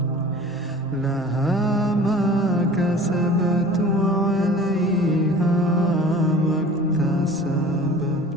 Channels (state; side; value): normal; both; correlation 0.44